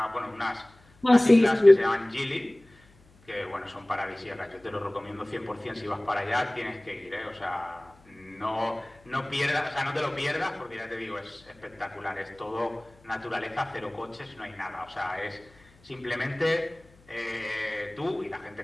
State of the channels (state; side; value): noise; left; hum, 28 dB below the sound